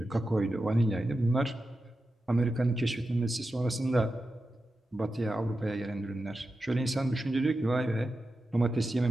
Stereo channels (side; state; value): both; normal; correlation 0.91